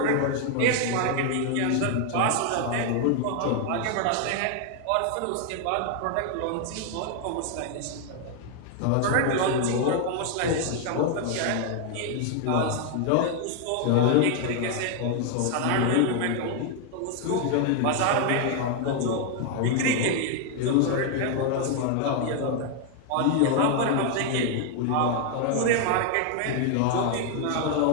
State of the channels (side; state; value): both; different; correlation 0.00